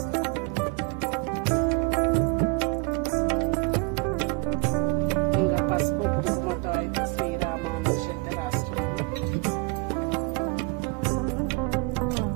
ఇంకా పసుపు కుంకుమతో అయితే శ్రీరామ అనేసి అయితే రాసుకున్నాను.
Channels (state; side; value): quieter; left; 29.6 dB